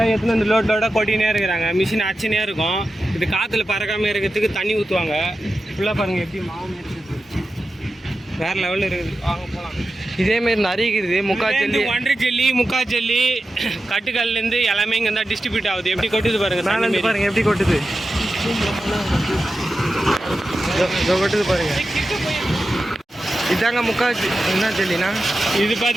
எடுத்துன்னு வந்து லோடாக கொட்டினே இருக்கிறாங்க. மிஷின் அச்சுனே இருக்கும். இது காற்றுல பறக்காமல் இருக்கிறதுக்கு தண்ணி ஊற்றுவாங்க. ஃபுல்லாக பாருங்கள் எப்படி மாவு இருக்குது, வேறு லெவலில் இருக்குது. வாங்க போகலாம். இதேமாரி நிறைய இருக்குது. முக்கால் ஒன்றரை ஜெல்லி, முக்கால் ஜெல்லி, கட்டுக்கல்லேருந்து எல்லாமே இங்கே தான் டிஸ்ட்ரிபியூட் ஆகுது. எப்படி கொட்டுது பாருங்கள். மேலே பாருங்கள் எப்படி கொட்டுது. கொட்டுது பாருங்க. இதாங்க முக்கால் என்ன ஜெல்லினா? இது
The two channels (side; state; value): both; normal; correlation 0.92